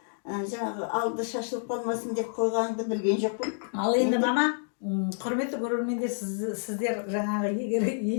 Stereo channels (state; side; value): silent; right; digital silence